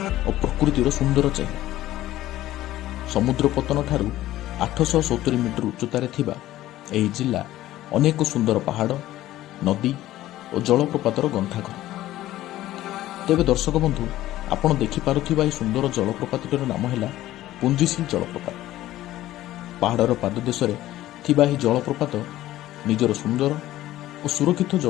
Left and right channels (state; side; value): quieter; right; 14.8 dB